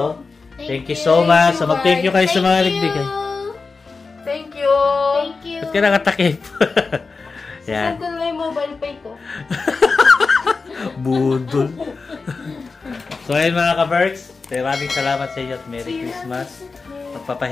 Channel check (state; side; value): quieter; right; 4.3 dB